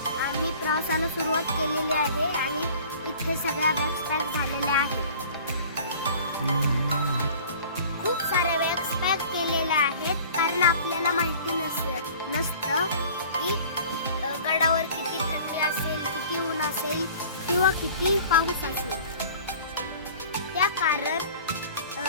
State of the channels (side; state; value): both; inverted; correlation -0.46